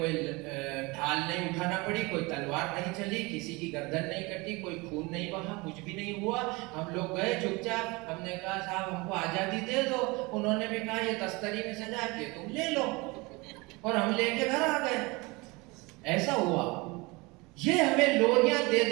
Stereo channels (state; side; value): quieter; left; 25.1 dB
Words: ढाल नहीं उठाना पड़ी, कोई तलवार नहीं चली, किसी की गर्दन नहीं कटी, कोई खून नहीं बहा, कुछ भी नहीं हुआ। हम लोग गए चुपचाप, हमने कहा साहब हमको आजादी दे दो, उन्होंने भी कहा ये तस्तरी में सजा के तुम ले लो, और हम लेके घर आ गए। ऐसा हुआ। ये हमें लोरियां दे